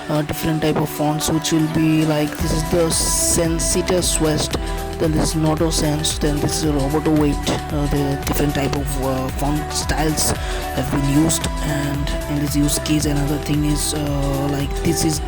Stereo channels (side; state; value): both; identical; correlation 1.00